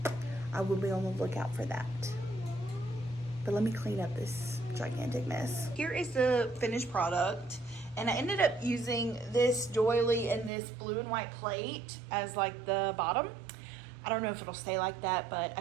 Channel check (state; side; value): drops out; left; at 10.5 s